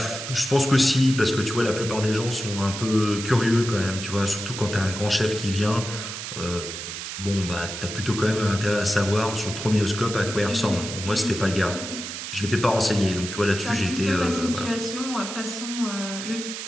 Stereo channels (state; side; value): noise; right; hiss, 7 dB below the sound